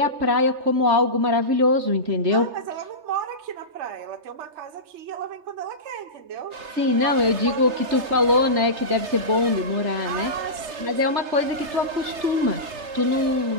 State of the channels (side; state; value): left; late; 3.3 ms